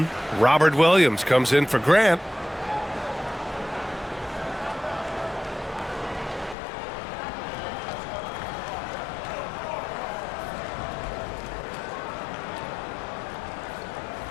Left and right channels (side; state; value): right; drops out; at 6.6 s